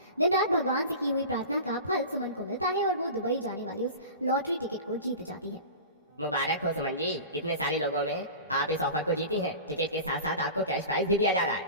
दिन रात भगवान से की हुई प्रार्थना का फल सुमन को मिलता है और वो दुबई जाने वाली उस लॉटरी टिकट को जीत जाती है। मुबारक हो सुमन जी, इतने सारे लोगों में आप इस ऑफर को जीती हैं। टिकट के साथ साथ आपको कैश प्राइज भी दिया जा रहा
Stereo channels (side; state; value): both; inverted; correlation -0.33